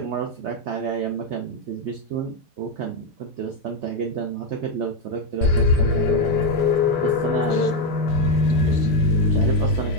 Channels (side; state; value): both; normal; correlation 0.05